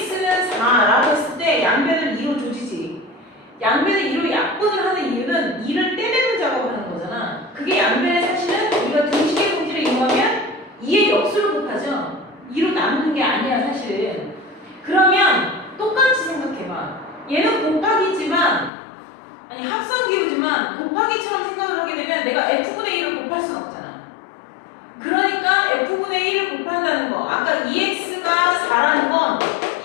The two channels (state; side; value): drops out; right; at 18.7 s